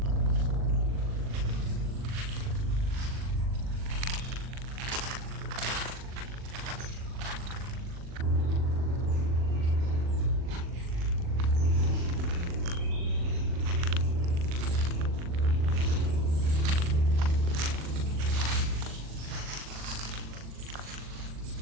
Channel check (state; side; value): late; left; 39 ms